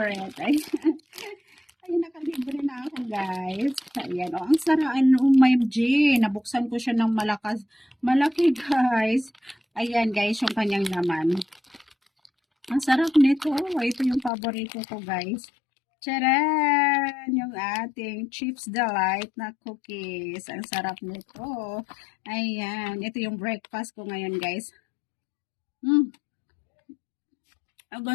Ayan, ayan nakalibre na ako guys. Ayan, ang sarap. OMG. Nabuksan ko siya ng malaki guys. Ayan guys, yung kanyang laman. Ang sarap nito. Ito yung paborito ko, guys. Charan! Yung ating Chips Delight na cookies. Ang sarap nito. Ayan. Ito yung breakfast ko ngayon, guys.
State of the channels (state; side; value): drops out; right; at 14.3 s